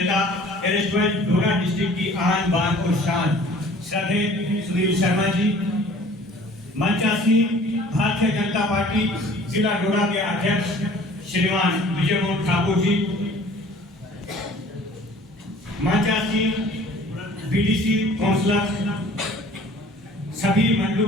डोडा डिस्ट्रिक्ट की आन बान और शान श्रद्धेय सुनील शर्मा जी, मंचासीन भारतीय जनता पार्टी जिला डोडा के अध्यक्ष श्रीमान विजय मोहन ठाकुर जी, मंचासीन बीडीसी काउंसलर, सभी मंडलों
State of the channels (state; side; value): normal; both; correlation 0.50